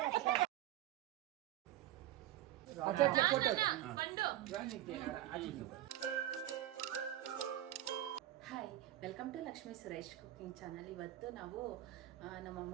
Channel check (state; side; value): quieter; left; 13.5 dB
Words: अच्छा photo hi welcome to Lakshmi Suresh cooking channel. ಇವತ್ತು ನಾವು ನಮ್ಮ